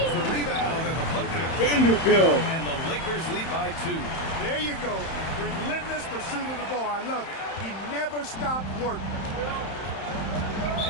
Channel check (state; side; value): late; right; 31 ms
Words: the rebound and the putback. Vanderbilt. And the Lakers lead by 2. There you go. Relentless pursuit of the ball. I love it. He never stopped working.